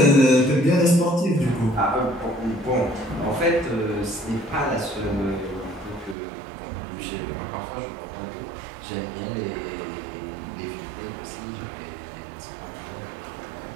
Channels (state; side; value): drops out; left; at 6.2 s